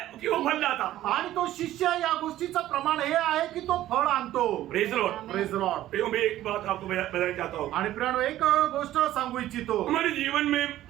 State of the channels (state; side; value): quieter; left; 13.9 dB